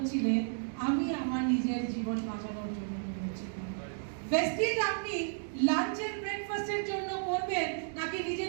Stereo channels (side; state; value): left; silent; digital silence